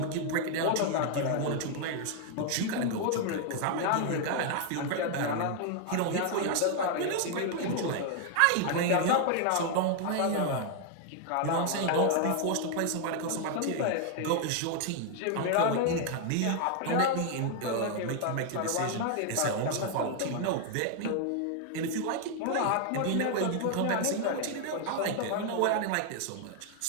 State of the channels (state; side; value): different; both; correlation 0.00